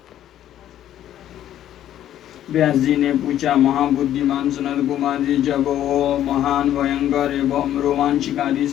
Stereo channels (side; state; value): right; quieter; 11.7 dB